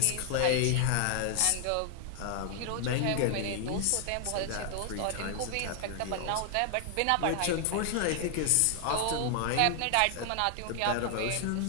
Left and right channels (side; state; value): both; different; correlation 0.00